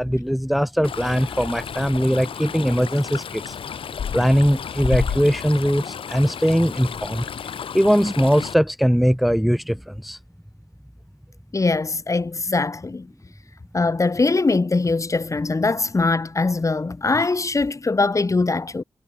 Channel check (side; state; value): both; normal; correlation 0.90